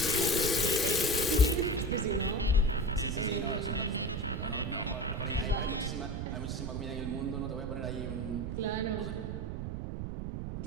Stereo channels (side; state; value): right; noise; rumble, 4 dB below the sound